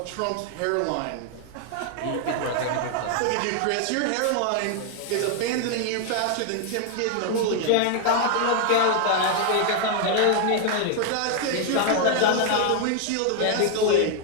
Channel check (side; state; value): both; different; correlation 0.00